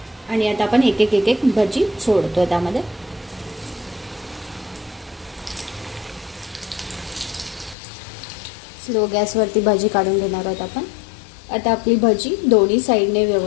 आणि आता आपण एक एक भजी सोडतो त्यामध्ये। स्लो गॅसवरती भाजी काढून घेणार आहोत आपण। आता आपली भजी दोन्ही साईडने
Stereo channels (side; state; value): right; drops out; at 7.8 s